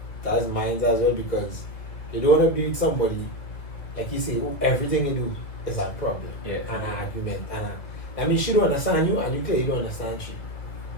is mine as well, because you don't want to be with somebody, like you say, who everything you do is a problem Yeah. and an argument. I mean, she don't understand you, and you clearly don't understand she.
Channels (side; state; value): right; late; 1.8 ms